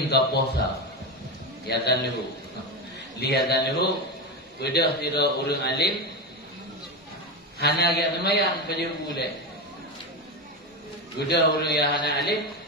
kaposa, lihatan lehu, bedah tira urang alim, hana yang semayang pada boleh. Bedah urang yang hana alim,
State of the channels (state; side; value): normal; both; correlation 0.16